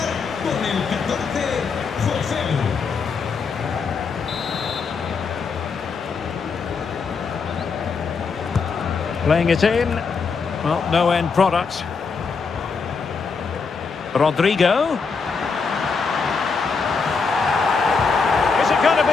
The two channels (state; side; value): quieter; right; 5.1 dB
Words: Playing it in. Well, no end product. Rodrigo. Is it going to